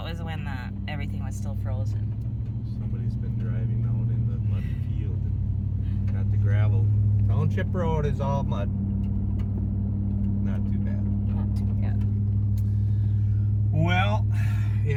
was when everything was still frozen? somebody's been driving out in the muddy field and got the gravel. Township Road is all mud. Not too bad. Not too bad. Well,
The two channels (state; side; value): identical; both; correlation 1.00